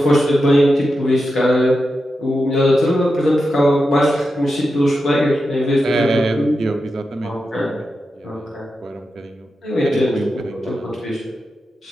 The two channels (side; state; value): both; normal; correlation 0.89